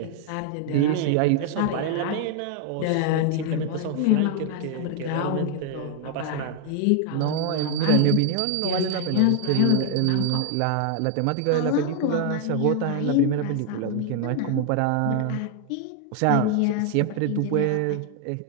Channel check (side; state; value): both; different; correlation 0.00